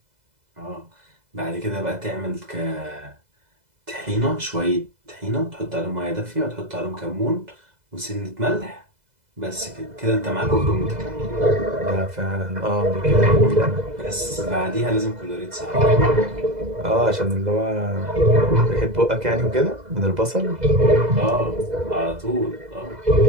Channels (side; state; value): left; late; 2.0 ms